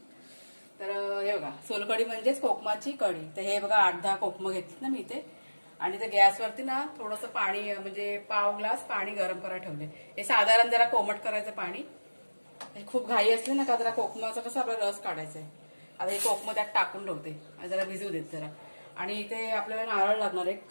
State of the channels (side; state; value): both; inverted; correlation -1.00